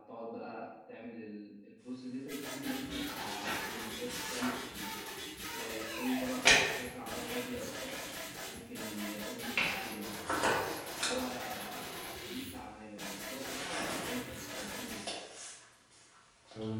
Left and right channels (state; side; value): identical; both; correlation 1.00